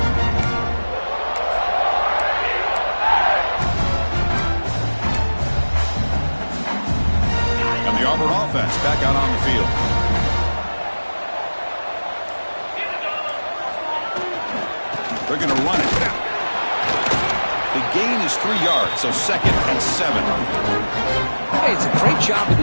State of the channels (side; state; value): both; inverted; correlation -1.00